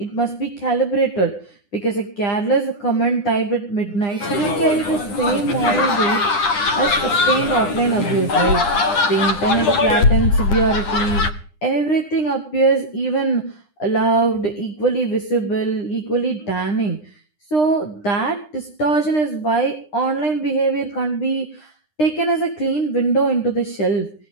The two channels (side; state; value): right; late; 9.9 ms